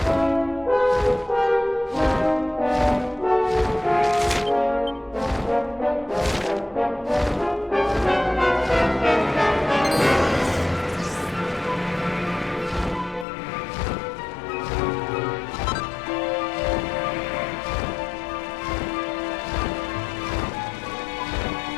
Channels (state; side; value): drops out; right; at 13.2 s